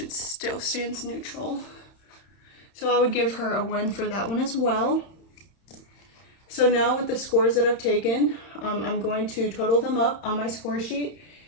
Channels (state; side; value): late; right; 31 ms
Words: still stands neutral. So I would give her a 1 for that one as well. So now with the scores that I've taken, I'm going to total them up on my score sheet